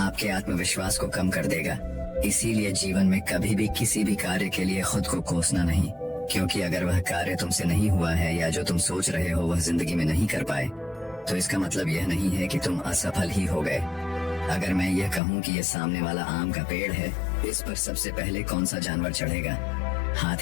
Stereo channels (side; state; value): right; drops out; at 15.2 s